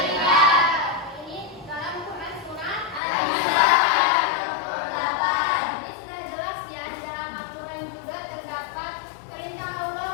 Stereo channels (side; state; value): right; drops out; at 3.0 s